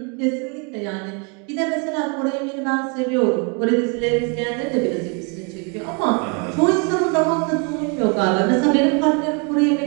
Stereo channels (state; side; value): quieter; left; 34.3 dB